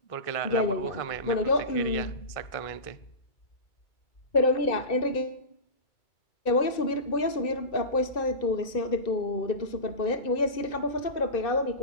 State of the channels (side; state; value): right; late; 2.6 ms